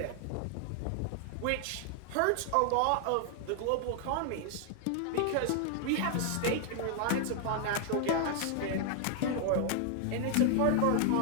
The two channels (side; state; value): both; different; correlation 0.00